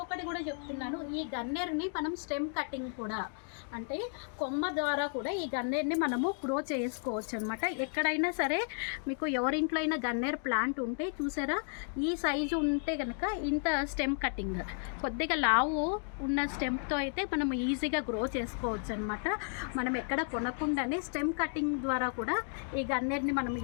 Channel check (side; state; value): right; silent; 56 dB below the other